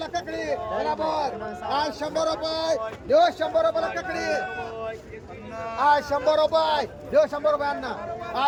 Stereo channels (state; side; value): identical; both; correlation 1.00